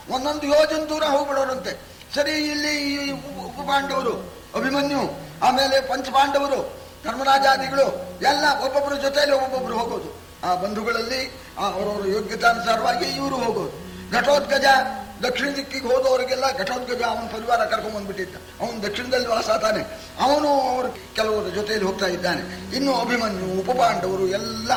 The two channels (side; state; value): both; identical; correlation 1.00